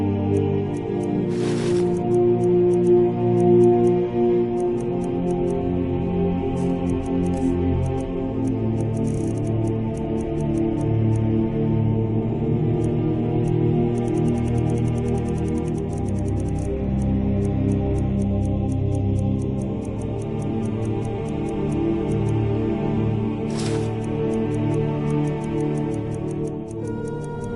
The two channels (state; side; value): identical; both; correlation 1.00